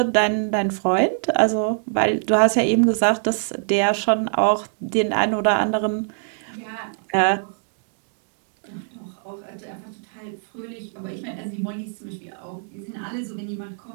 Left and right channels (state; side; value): silent; left; 63 dB below the other